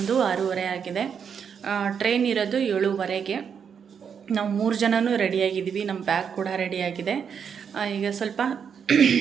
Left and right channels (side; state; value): left; quieter; 7.1 dB